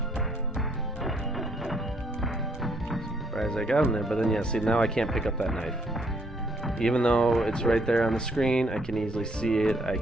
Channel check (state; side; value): normal; both; correlation 0.68